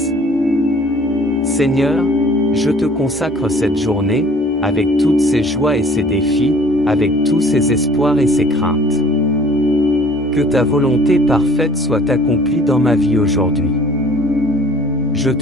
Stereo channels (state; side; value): normal; both; correlation 0.52